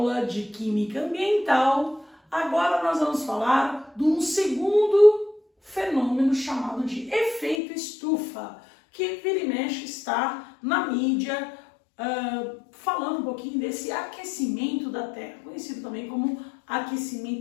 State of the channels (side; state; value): right; drops out; at 7.6 s